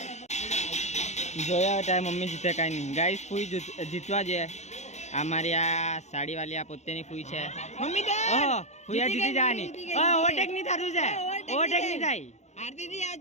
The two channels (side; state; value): right; late; 0.33 ms